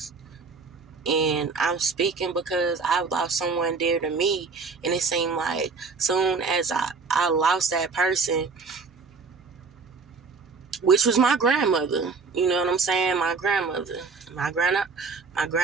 and I'm speaking because I lost someone dear to me, and it seemed like soon as I lost that person, which was my grandmother, you know what I'm saying? My grandmother, my grandma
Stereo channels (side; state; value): left; quieter; 4.6 dB